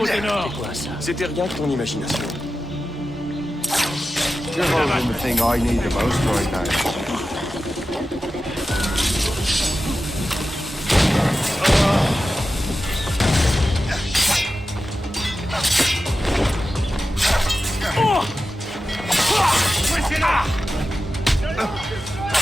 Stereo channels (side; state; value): both; normal; correlation 0.93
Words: nord. C'était rien que ton imagination. You're holding the thing I need the most right now.